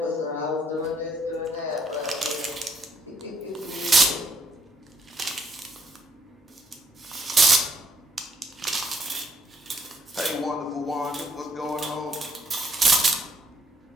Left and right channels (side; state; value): both; normal; correlation 0.69